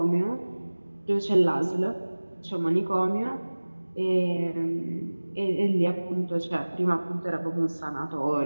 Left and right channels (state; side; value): inverted; both; correlation -1.00